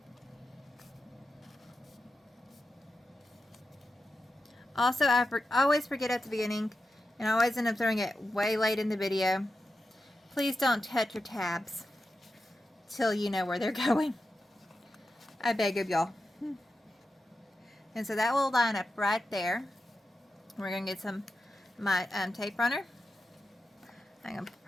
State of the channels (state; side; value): normal; both; correlation 0.90